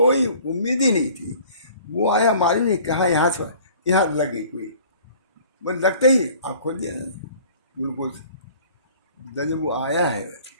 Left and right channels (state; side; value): inverted; both; correlation -0.50